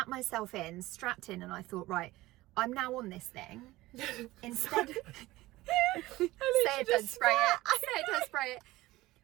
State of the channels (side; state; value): left; quieter; 18.3 dB